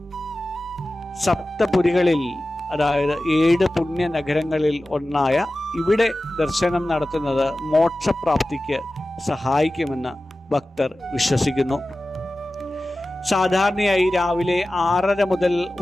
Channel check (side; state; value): both; normal; correlation 0.95